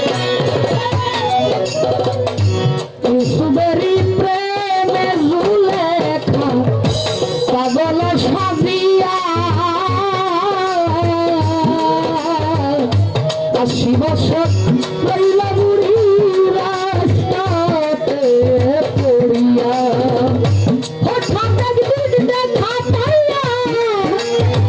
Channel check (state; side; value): identical; both; correlation 1.00